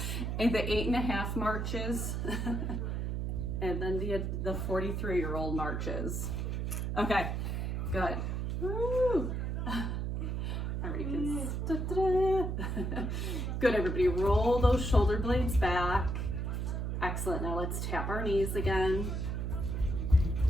And the 8.5 marches. And then the 43-year-old marches. Okay, good. Woo. All right, kids. Good, everybody. Roll those shoulder blades back. Excellent. Now let's tap our knees again.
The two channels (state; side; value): noise; right; hum, 1 dB below the sound